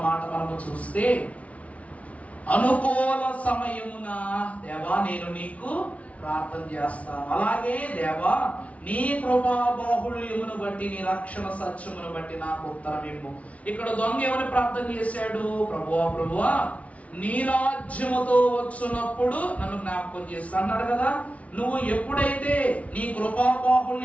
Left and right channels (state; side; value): late; right; 0.066 ms